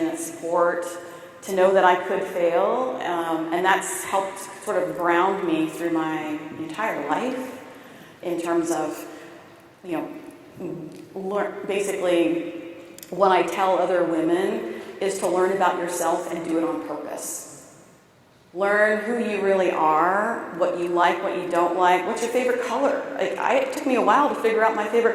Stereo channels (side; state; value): both; identical; correlation 1.00